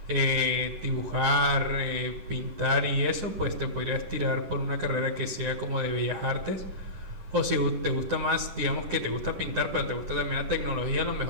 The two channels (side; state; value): left; late; 10 ms